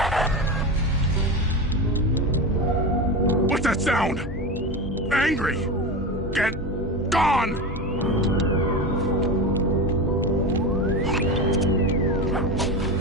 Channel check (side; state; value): both; normal; correlation 0.22